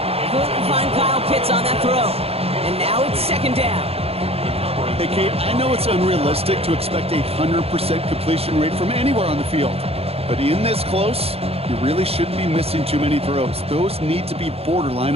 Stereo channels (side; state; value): left; late; 0.29 ms